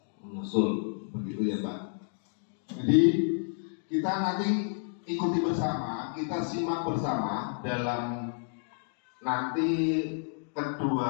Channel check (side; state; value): right; silent; digital silence